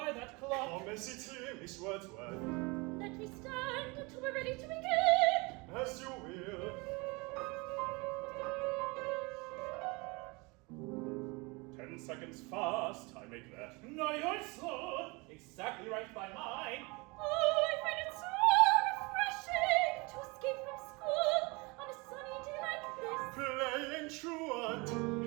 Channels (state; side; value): quieter; left; 27.1 dB